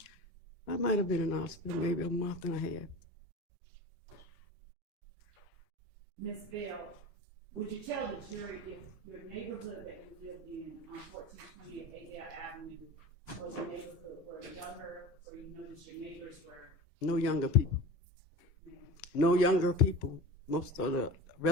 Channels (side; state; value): both; normal; correlation 0.33